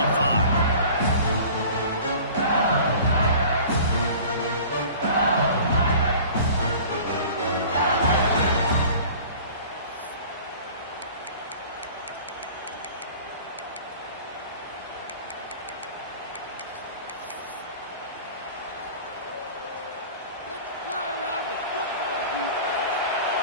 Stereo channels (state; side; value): inverted; both; correlation -0.44